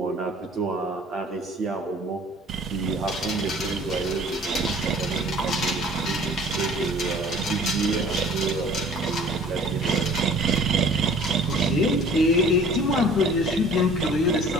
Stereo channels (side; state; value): both; normal; correlation 0.50